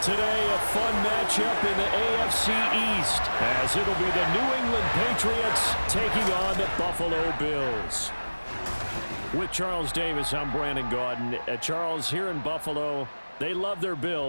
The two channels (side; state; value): both; inverted; correlation -1.00